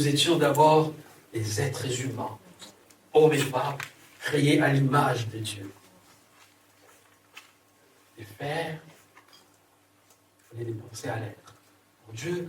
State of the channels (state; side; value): identical; both; correlation 1.00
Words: étions d'abord des êtres humains, hommes et femmes, créés à l'image de Dieu. Et faire, il faut les penser à l'être. Pour Dieu,